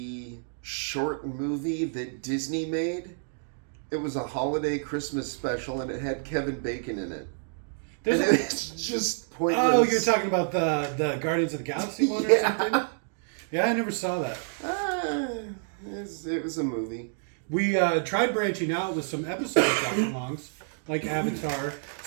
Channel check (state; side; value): silent; left; digital silence